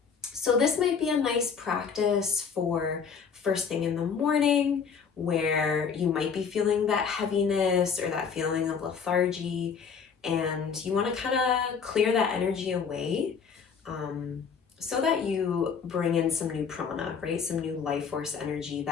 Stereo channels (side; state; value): right; quieter; 6.3 dB